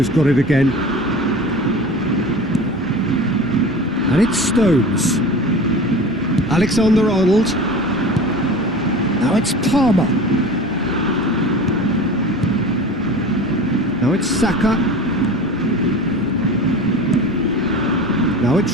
got it again. And it's Stones. Alexander-Arnold. Now it's Palmer. Now it's Saka. Now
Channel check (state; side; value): normal; both; correlation 0.35